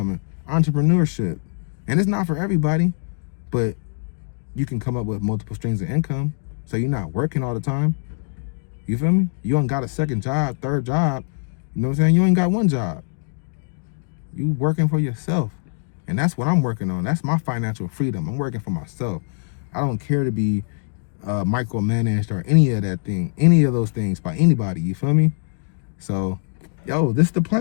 and entrepreneurship. And it's not for everybody, but you can come up with multiple streams of income so you're not working all the time. You feel me? You ain't got a second job, third job. You know what I'm saying? You ain't got one job. You working for yourself. And that's what I'm working on. That's my financial freedom. I'm working for myself. I don't care to be micromanaged or any of those things by anybody. You feel me? So, yo, this is the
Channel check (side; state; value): right; silent; digital silence